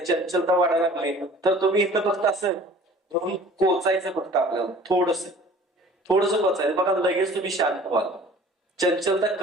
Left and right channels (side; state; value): both; normal; correlation 0.48